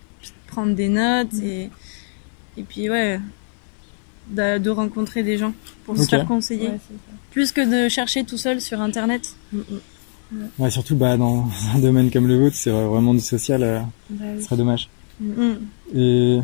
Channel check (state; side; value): silent; right; 65 dB below the other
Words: Prendre des notes et puis de rencontrer des gens pour se faire conseiller. Ouais, plus que de chercher tout seul sur internet. Ouais, surtout dans un domaine comme le vôtre, c'est vraiment du social, ce serait dommage. Et